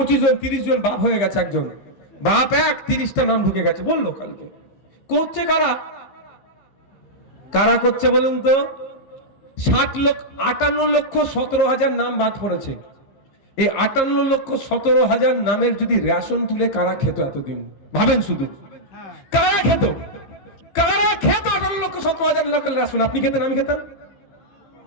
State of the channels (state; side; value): late; right; 15 ms